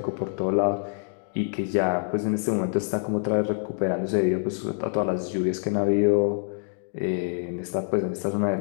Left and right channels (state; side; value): silent; right; digital silence